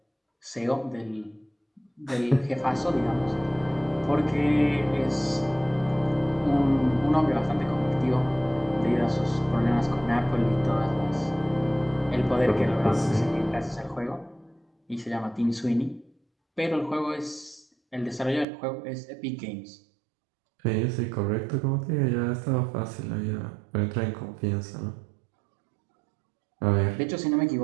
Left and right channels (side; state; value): left; drops out; at 18.4 s